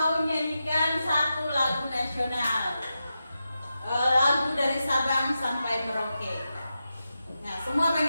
nyanyikan satu lagu nasional. Lagu dari Sabang sampai Merauke. Nah, semua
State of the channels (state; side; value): inverted; both; correlation -0.89